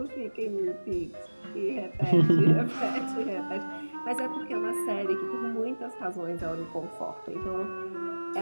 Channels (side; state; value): both; inverted; correlation -1.00